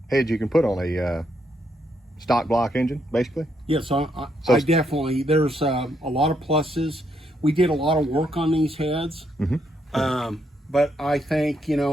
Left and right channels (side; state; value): both; normal; correlation 0.76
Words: heads you can put on a stock block engine, basically. Yes, I definitely, there's a lot of pluses. We did a lot of work on these heads, but I think, you